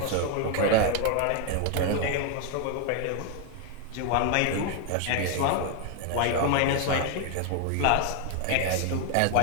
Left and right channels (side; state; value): both; different; correlation 0.01